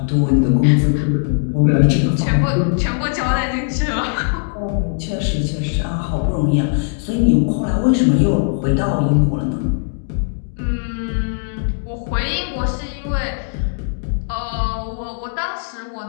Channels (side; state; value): right; silent; digital silence